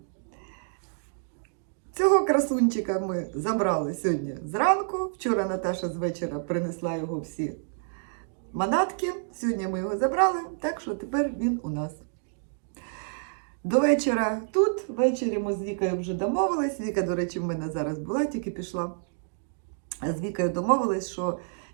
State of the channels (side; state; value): left; silent; digital silence